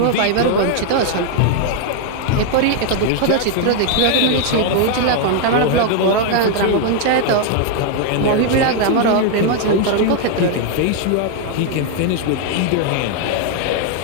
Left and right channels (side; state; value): both; different; correlation 0.00